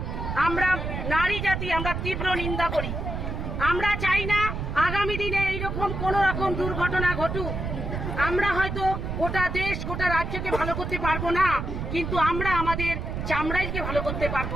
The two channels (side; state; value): right; noise; rumble, 4 dB below the sound